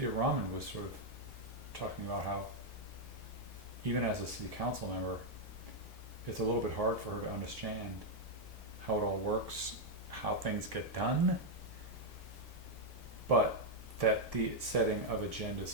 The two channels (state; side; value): normal; both; correlation 0.00